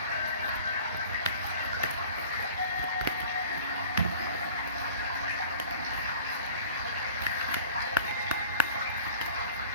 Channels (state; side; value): inverted; both; correlation -0.45